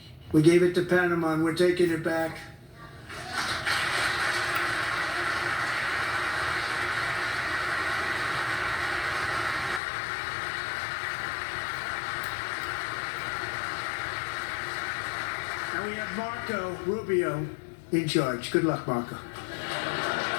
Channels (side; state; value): right; drops out; at 9.8 s